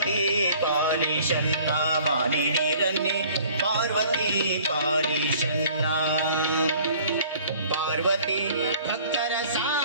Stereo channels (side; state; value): both; inverted; correlation -0.52